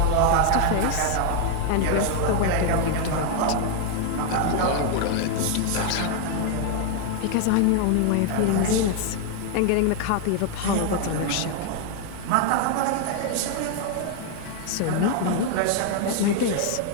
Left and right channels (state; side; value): different; both; correlation 0.00